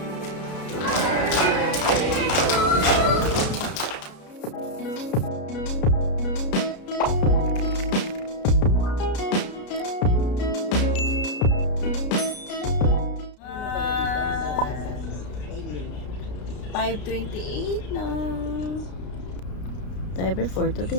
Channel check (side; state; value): right; late; 33 ms